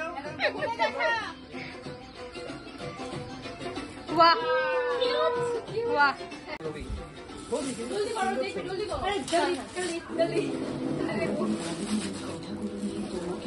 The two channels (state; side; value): identical; both; correlation 1.00